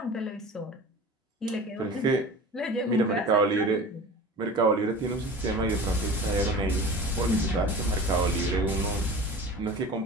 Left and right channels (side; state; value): both; normal; correlation 0.37